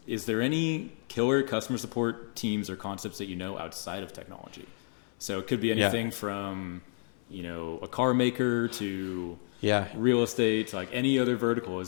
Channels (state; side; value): silent; right; 57 dB below the other